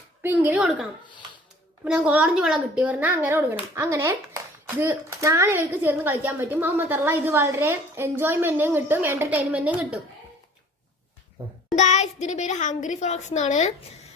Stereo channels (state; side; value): normal; both; correlation 0.50